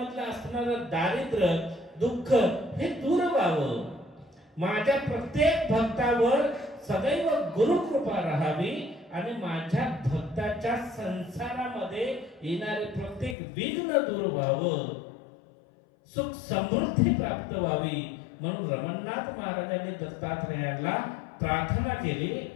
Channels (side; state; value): right; drops out; at 13.4 s